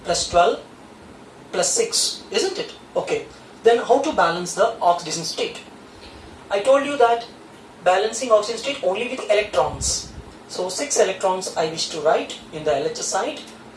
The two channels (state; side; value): identical; both; correlation 1.00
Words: plus 12 plus 6, isn't it? Okay. Then how to balance the oxidation state? I told you that balancing oxidation state only with electrons. So 6 electrons I wish to write in the LHS side,